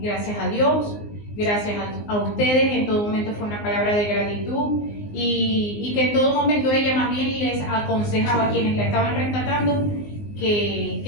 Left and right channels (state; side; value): late; right; 19 ms